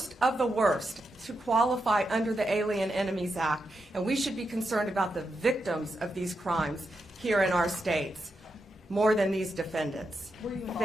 to qualify under the Alien Enemies Act, and we should be concerned about the victims of these crimes here in our states more than these defendants. Were you involved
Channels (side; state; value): both; normal; correlation 0.85